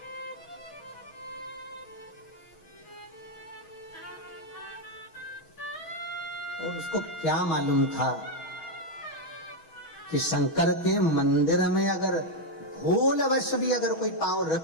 और उसको क्या मालूम था कि शंकर के मंदिर में अगर भूलवश भी अगर कोई पांव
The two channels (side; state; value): right; late; 6.2 ms